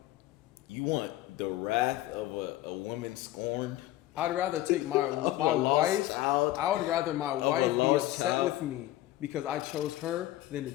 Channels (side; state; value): right; quieter; 15.1 dB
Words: You want the wrath of a woman scorned? I'd rather take my wife. I would rather my wife be upset with me because I chose her than to